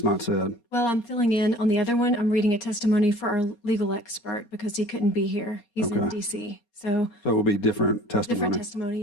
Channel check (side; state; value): right; late; 4.2 ms